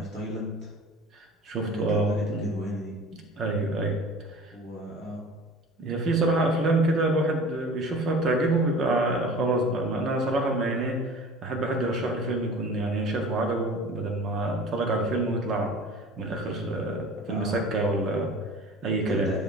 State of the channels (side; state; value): both; normal; correlation 0.41